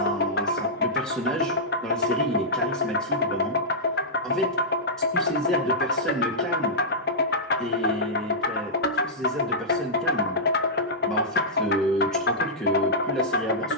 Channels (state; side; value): normal; both; correlation -0.12